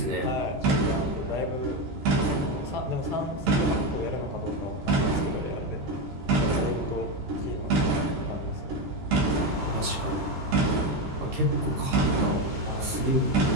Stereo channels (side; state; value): left; late; 14 ms